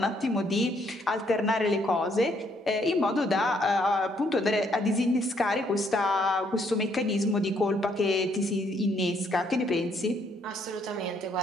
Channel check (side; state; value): both; normal; correlation 0.70